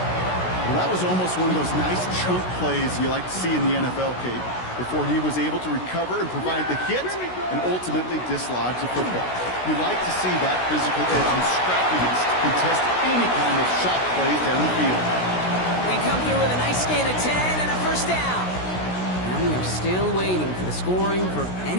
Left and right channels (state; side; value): late; right; 16 ms